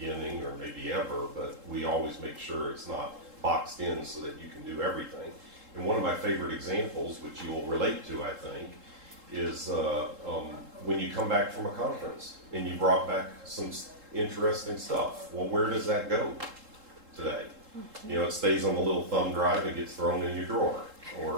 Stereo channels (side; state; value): left; late; 3.7 ms